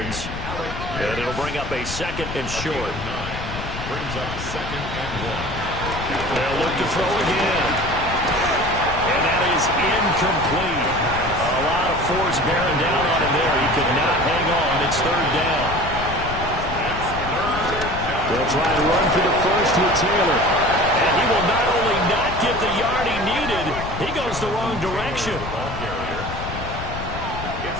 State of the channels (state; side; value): noise; left; rumble, 8 dB below the sound